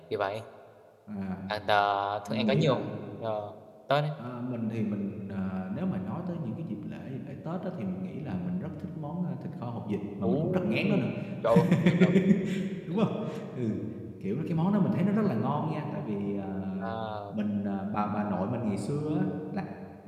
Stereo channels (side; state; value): both; identical; correlation 1.00